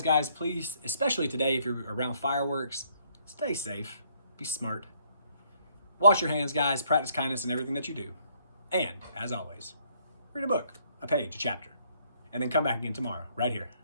guys, please, especially today if you're around fireworks, stay safe, be smart. Wash your hands, guys, practice kindness in everything that you do. And, as always, read a book, a page, a chapter, and then come back again tomorrow, right here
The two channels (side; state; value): both; inverted; correlation -0.67